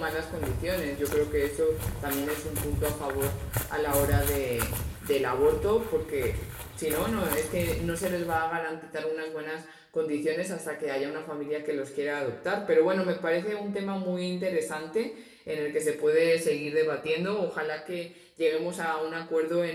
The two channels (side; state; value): both; identical; correlation 1.00